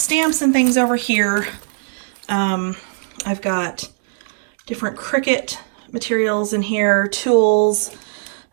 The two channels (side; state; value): left; silent; digital silence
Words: and things over here. I've got different Cricut materials in here, tools,